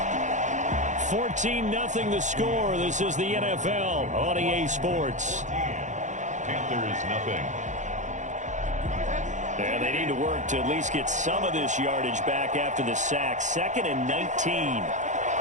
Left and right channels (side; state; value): left; late; 0.35 ms